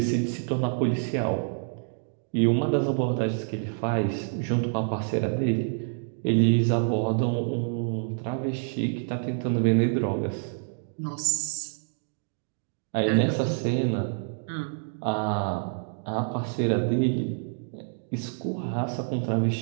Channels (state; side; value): silent; left; digital silence